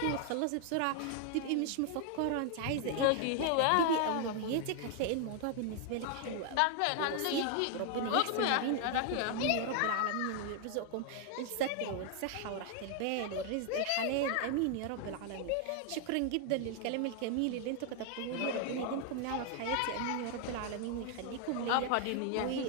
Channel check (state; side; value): different; both; correlation 0.00